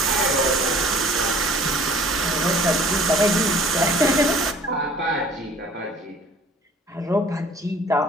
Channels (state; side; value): normal; both; correlation 0.51